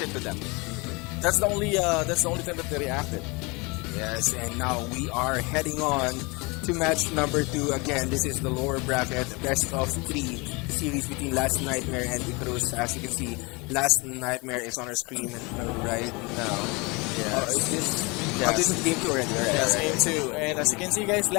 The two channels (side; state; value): right; quieter; 27.4 dB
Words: to them. That's the only time that they reacted. Yes, and now we are heading on to match number 2. Again, this is the lower bracket, best of 3 series between Last Nightmare and Icarus. As we can see, Last Nightmare is on our screen right now. Yes. Is this? Yes. Oh, this is the game 2 already. All right. Yes, all right, game right. 2. And as you can see, guys,